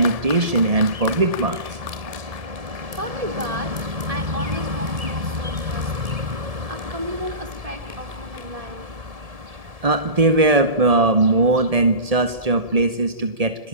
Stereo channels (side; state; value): left; late; 1.7 ms